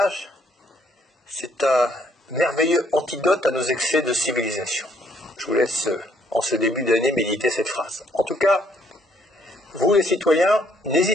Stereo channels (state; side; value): normal; both; correlation 0.67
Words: c'est un merveilleux antidote à nos excès de civilisation. Je vous laisse en ce début d'année méditer cette phrase. En tout cas, vous les citoyens,